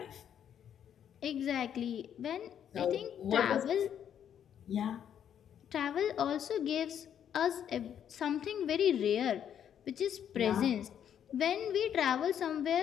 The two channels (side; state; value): right; quieter; 9.2 dB